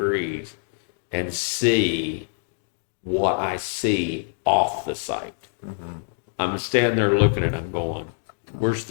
and see what I see off the site. I'm standing there looking at it, I'm going, where's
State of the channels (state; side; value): silent; right; digital silence